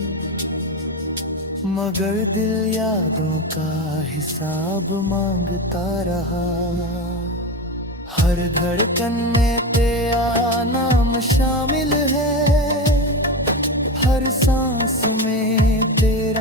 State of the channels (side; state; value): both; normal; correlation 0.21